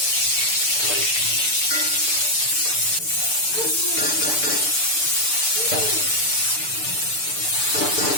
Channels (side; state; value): right; late; 6.8 ms